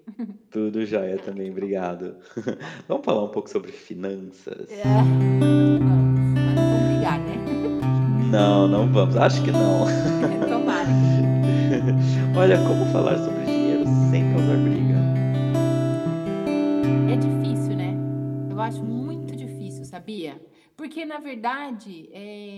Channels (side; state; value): both; identical; correlation 1.00